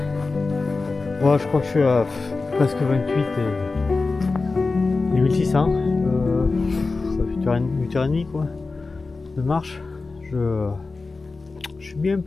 Moi je crois que je suis à presque 28 et 1600. Ça fait 8h30 quoi de marche. Je suis bien un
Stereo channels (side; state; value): right; quieter; 3.8 dB